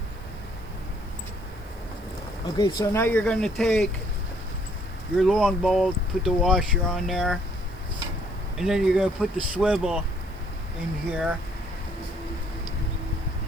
Okay, so now you're going to take your long bolt, put the washer on there, and then you're going to put the swivel in here.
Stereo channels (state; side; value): noise; right; hiss, 28 dB below the sound